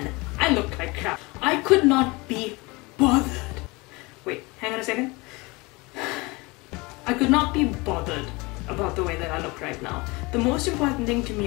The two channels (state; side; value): quieter; right; 24.8 dB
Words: I looked like crap. I could not be bothered. Wait, hang on a second. I could not be bothered about the way that I look right now. The most important thing to